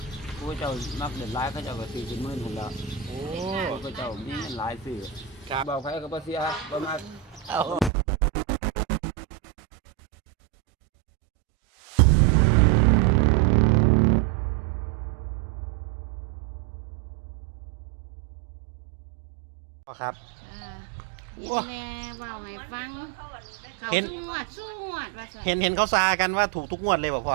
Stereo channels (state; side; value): drops out; left; at 7.9 s